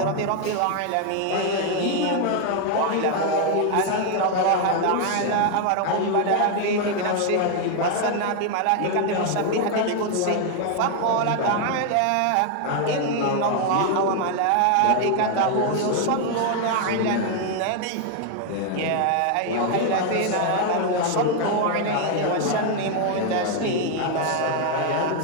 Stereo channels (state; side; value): different; both; correlation 0.00